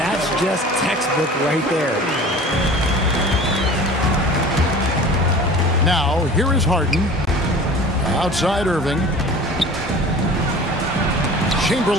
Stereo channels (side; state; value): both; normal; correlation 0.41